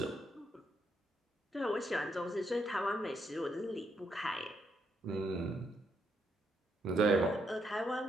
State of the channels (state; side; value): normal; both; correlation 0.77